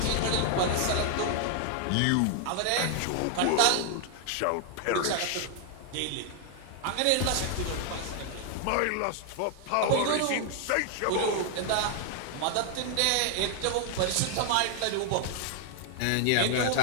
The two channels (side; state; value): both; different; correlation 0.00